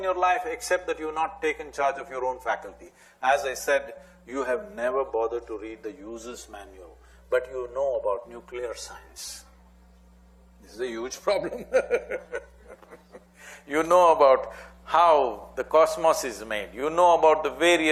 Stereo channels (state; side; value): identical; both; correlation 1.00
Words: your life except that you've not taken charge of your own faculty. As I said, you have never bothered to read the user's manual, but you know about nuclear science. This is a huge problem. You know about how the cosmos is made, you know about the